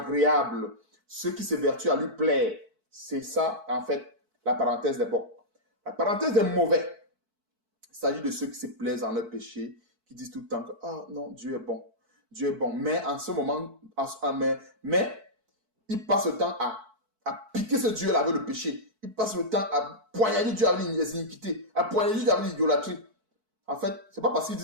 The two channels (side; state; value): left; late; 4.6 ms